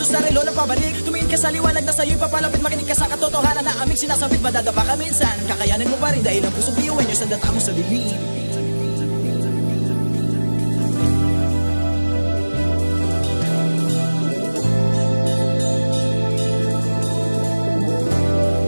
sa relo na pabalik Tumingin ka sa liwanag na sa'yo'y papalapit Makinig ka sa katotohanan na aming sinasabit Madadapa ka minsan, kakayanin mo pa rin Dahil ang pusong biyuin nyo sa data mo sa dilim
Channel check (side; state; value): both; inverted; correlation -1.00